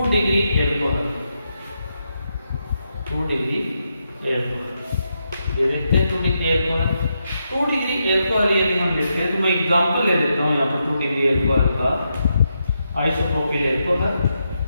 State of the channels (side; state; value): both; inverted; correlation -0.83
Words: degree alcohol. 2 degree alcohol ये देखते हैं 2 डिग्री एल्कोहल। 2 डिग्री एल्कोहल यदि हम लेते हैं तो मैं एग्जांपल ले लेता हूं यहाँ पर 2 डिग्री एल्कोहल का, आइसोप्रोपिल एल्कोहल,